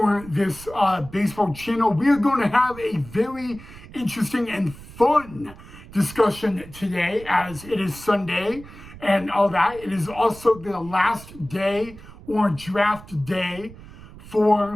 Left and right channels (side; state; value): right; noise; rumble, 18 dB below the sound